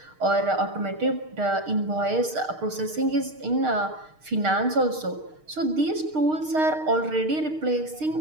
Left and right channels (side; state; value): left; late; 6.5 ms